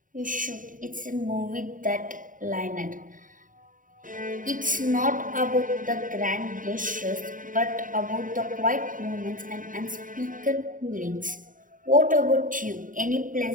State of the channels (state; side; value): late; left; 0.39 ms